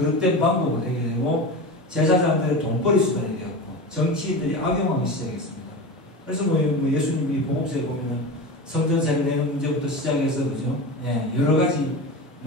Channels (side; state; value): both; normal; correlation 0.27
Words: 방법으로 되게 되고 제사장들의 돈벌이 수단이 되었고 정치인들이 악용하기 시작했습니다. 그래서 뭐 예수님이 복음서에 보면은 성전세를 내는 문제부터 시작해서 그죠? 예, 여러 가지